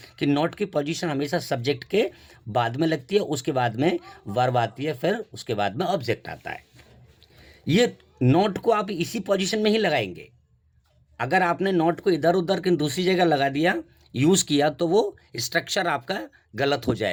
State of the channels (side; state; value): both; identical; correlation 1.00